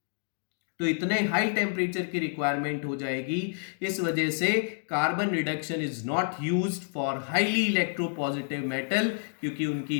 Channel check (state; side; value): silent; right; digital silence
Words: तो इतने हाई टेम्परेचर की रिक्वायरमेंट हो जाएगी। इस वजह से carbon reduction is not used for highly electropositive metal, क्योंकि उनकी